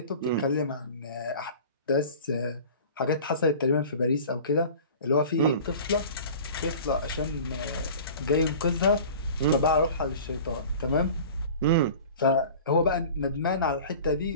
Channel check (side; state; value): both; inverted; correlation -0.40